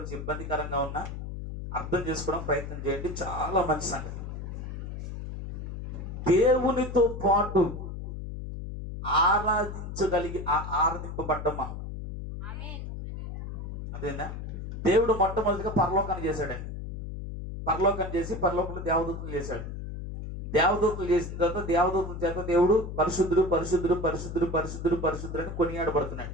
ఇబ్బందికరంగా ఉన్నా అర్థం చేసుకోవడం ప్రయత్నం చేయండి. చాలా మంచి సంగతి. దేవునితో పాటు ఆరాధింపబడ్డమా? అదేనా? దేవుడు మొట్టమొదటిగా పరలోకాన్ని చేశాడండి. పరలోకాన్ని చేసి పరలోకంలో దేవదూతలు చేశాడు. దేవదూతలు చేసిన తర్వాత దేవదూతల చేత దేవుడు పరిశుద్ధుడు పరిశుద్ధుడు పరిశుద్ధుడు పరిశుద్ధుడు పరిశుద్ధుడు అని కొనియాడబడుతున్నాడు.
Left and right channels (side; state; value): left; noise; hum, 7 dB below the sound